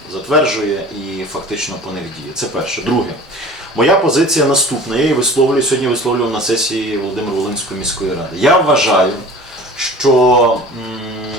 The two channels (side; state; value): both; normal; correlation 0.42